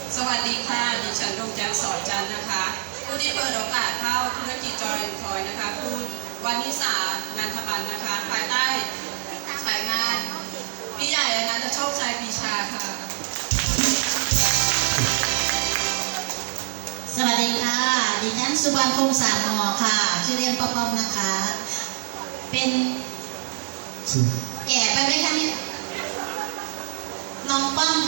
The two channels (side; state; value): left; silent; digital silence